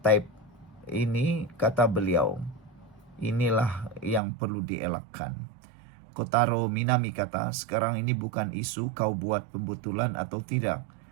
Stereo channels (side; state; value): left; drops out; at 4.2 s